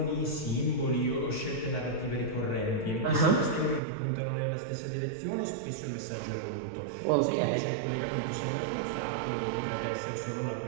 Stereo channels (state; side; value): drops out; left; at 3.8 s